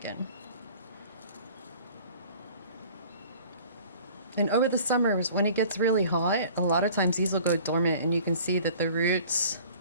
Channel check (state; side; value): inverted; both; correlation -0.48